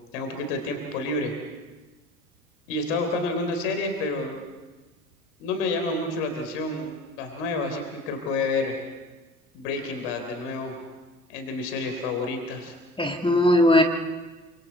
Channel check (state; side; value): normal; both; correlation 0.44